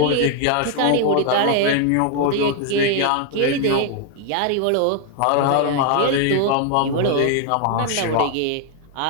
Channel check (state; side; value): different; both; correlation 0.00